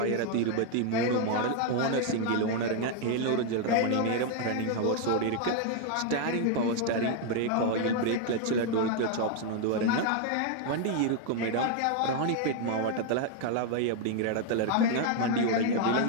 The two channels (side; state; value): both; different; correlation 0.00